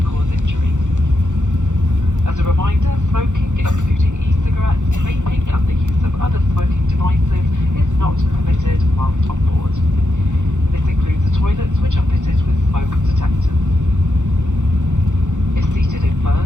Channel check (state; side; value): late; left; 0.85 ms